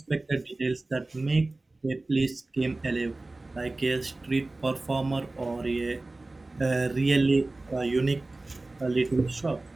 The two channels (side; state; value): left; quieter; 3.0 dB